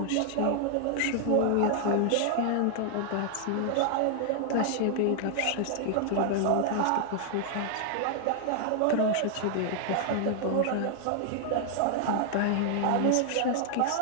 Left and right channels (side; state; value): both; different; correlation 0.00